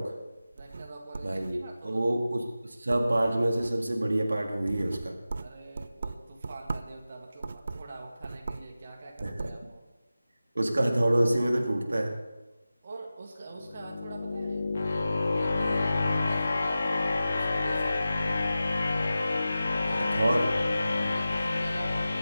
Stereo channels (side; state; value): both; inverted; correlation -0.94